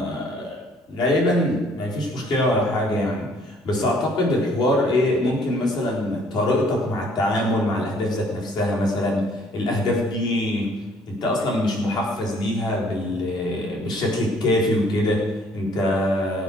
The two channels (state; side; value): normal; both; correlation 0.60